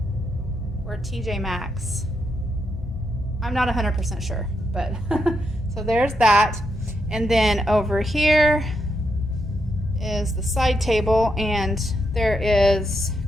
or TJ Maxx. I'm not 100% sure, but so there's that. And then over here is the side table, and there is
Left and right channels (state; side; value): normal; both; correlation 0.82